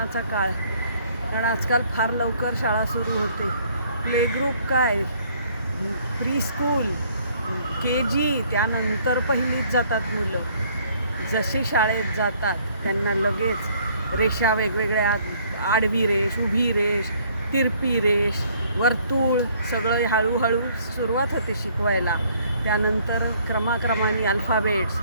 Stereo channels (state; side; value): inverted; both; correlation -0.62